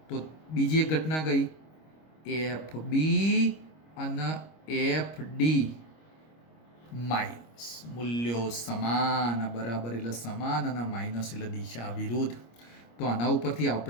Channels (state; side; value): late; right; 25 ms